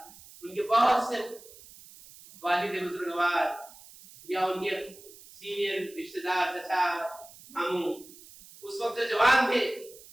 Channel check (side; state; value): right; noise; hiss, 20 dB below the sound